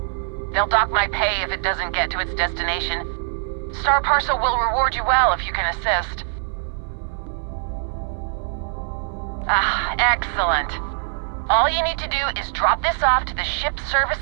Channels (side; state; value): left; silent; 59 dB below the other